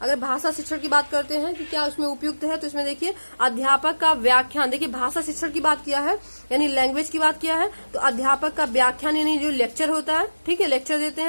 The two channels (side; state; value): both; inverted; correlation -1.00